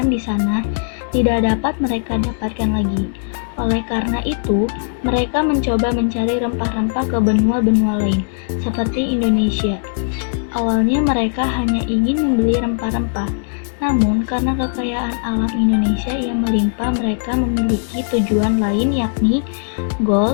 di sana tidak dapat mereka dapatkan lagi. Oleh karena itu, mereka mencoba mencari rempah-rempah ke benua-benua lain, seperti Indonesia. Awalnya mereka hanya ingin membeli rempah-rempah, namun karena kekayaan alam Indonesia yang melimpah, mereka memiliki tujuan lain, yakni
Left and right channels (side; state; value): right; silent; digital silence